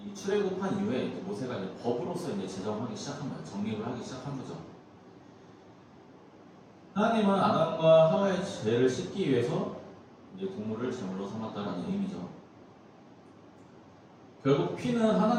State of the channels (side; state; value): both; identical; correlation 1.00